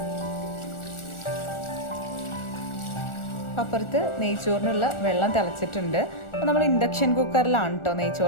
അപ്പുറത്ത് നെയ്ച്ചോറിനുള്ള വെള്ളം തിളച്ചിട്ടുണ്ട്. അപ്പോൾ നമ്മൾ ഇൻഡക്ഷൻ കുക്കറിലാണ് കേട്ടോ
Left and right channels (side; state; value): right; late; 1.4 ms